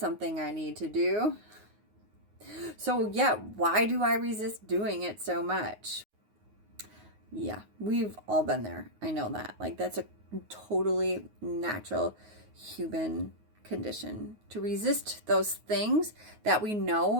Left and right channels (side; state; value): left; late; 9.5 ms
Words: I need to do. So yeah, why do I resist doing it so much? Yeah, we've all been there. I know that. Like, that's a totally natural human condition to resist those things that we